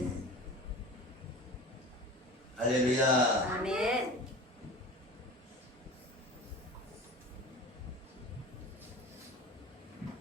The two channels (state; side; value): normal; both; correlation 0.36